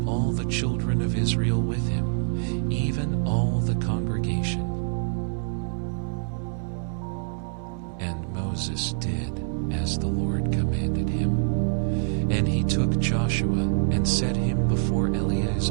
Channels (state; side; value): silent; left; 61 dB below the other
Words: all the children of Israel with him, even all the congregation. And Moses did as the Lord commanded him. And he took Joshua and set him before